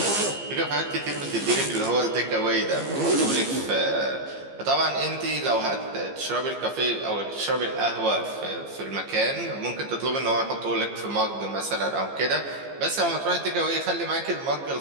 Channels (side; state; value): left; late; 15 ms